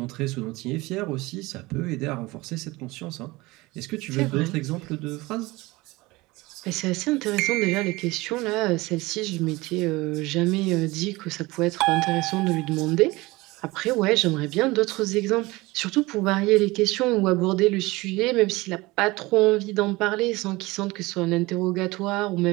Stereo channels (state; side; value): quieter; left; 21.5 dB